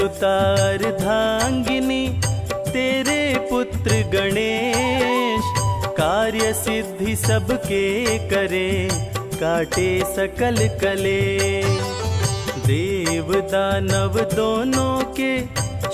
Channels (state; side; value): identical; both; correlation 1.00